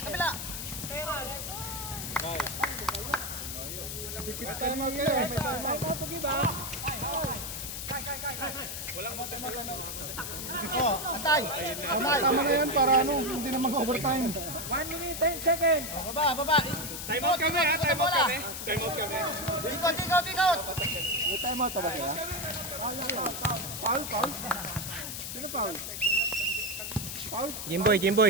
Kabila. May time out kayo. Time out to give ha. Antay. Tama na yan para hindi na mag-overtime. 1 minute 10 seconds. Baba. Time out kami. Ikot. May time out ba sila? Foul. Sino foul? Jimboy.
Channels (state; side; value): noise; left; hiss, 6 dB below the sound